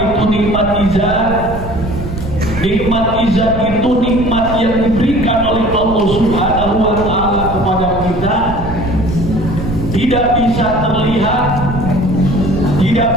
itu nikmat ijad? Nikmat ijad itu nikmat yang diberikan oleh Allah Subhanahu wa Ta'ala kepada kita, tidak bisa terlihat, tidak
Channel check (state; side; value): noise; right; rumble, 8 dB below the sound